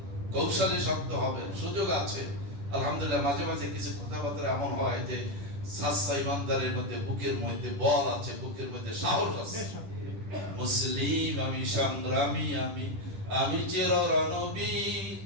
কৌশলে শক্ত হবে। সুযোগ আছে আলহামদুলিল্লাহ। মাঝে মাঝে কিছু কথাবার্তা এমন হয় যে সাচ্চা ইমানদারের মধ্যে বুকের মধ্যে বল আছে, বুকের মধ্যে সাহস আছে। মুসলিম আমি, সংগ্রামী আমি, আমি চির রণবীর,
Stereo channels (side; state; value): left; late; 10 ms